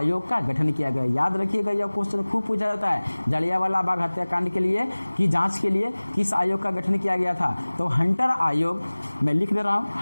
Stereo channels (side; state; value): both; inverted; correlation -1.00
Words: का गठन किया गया। याद रखिएगा, यह क्वेश्चन खूब पूछा जाता है। जालियांवाला बाग हत्याकांड के लिए की जांच के लिए किस आयोग का गठन किया गया था, तो हंटर आयोग, मैं लिख दे रहा हूँ,